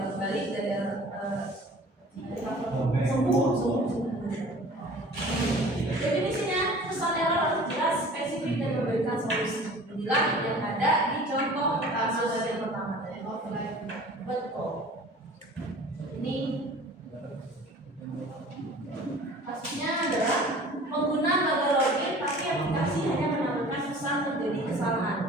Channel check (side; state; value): both; normal; correlation 0.45